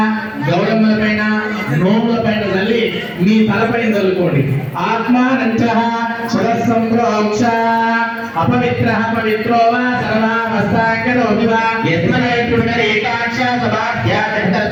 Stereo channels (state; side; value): identical; both; correlation 1.00